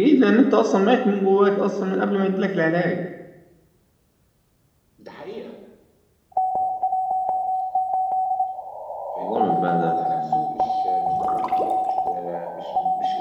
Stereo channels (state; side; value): identical; both; correlation 1.00